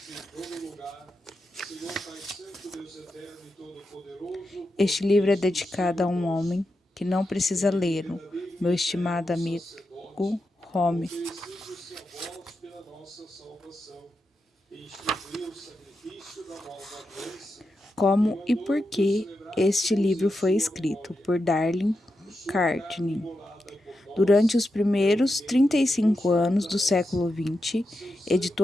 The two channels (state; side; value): normal; both; correlation 0.88